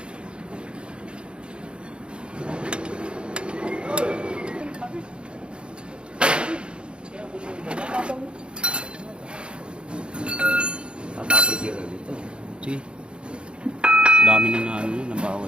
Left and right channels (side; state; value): left; late; 0.054 ms